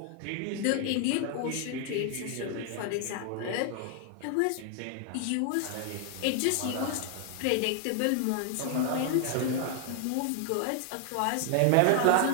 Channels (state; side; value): different; both; correlation 0.00